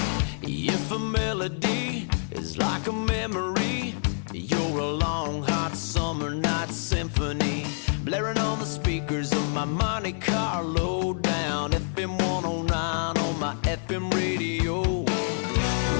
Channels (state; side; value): silent; right; digital silence